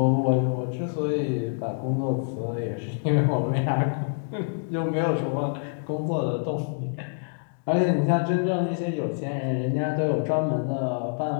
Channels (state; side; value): silent; right; digital silence